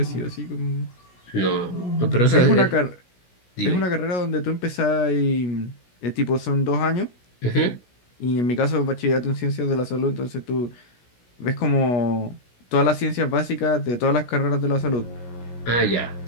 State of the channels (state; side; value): late; right; 17 ms